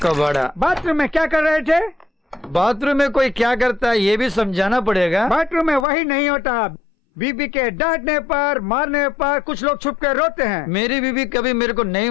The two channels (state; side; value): drops out; right; at 5.9 s